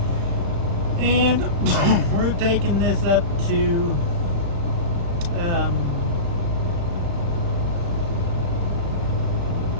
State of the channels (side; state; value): left; late; 35 ms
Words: And we're taking this up to